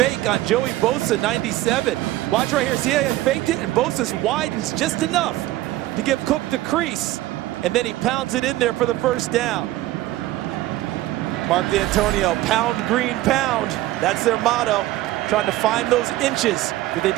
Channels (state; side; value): quieter; left; 16.2 dB